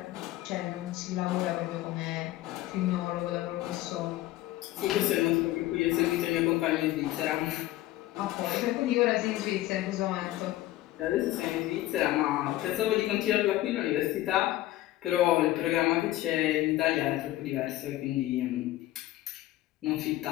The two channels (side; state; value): right; quieter; 15.8 dB